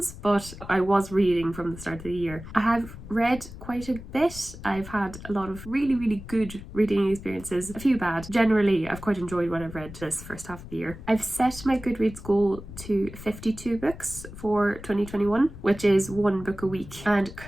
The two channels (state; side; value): noise; left; rumble, 14 dB below the sound